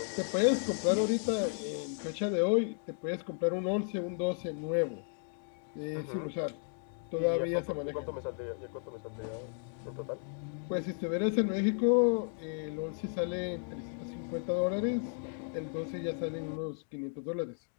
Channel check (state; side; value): silent; right; 55 dB below the other